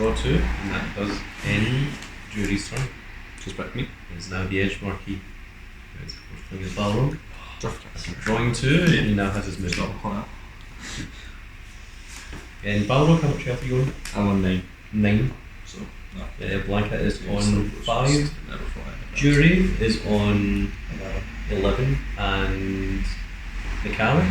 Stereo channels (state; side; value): identical; both; correlation 1.00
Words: 2, and that does end Juri's turn. Just back me. It's now the edge marquee. It's of course playing his Balrog. Draft. After drawing 2, he now has his It's not movement. hot. And Balrog, how much health are you on? I'm on 9. 9. So, no. Blanka is Yeah, on so 5. Never fly. Juri is on 11. And Necalli?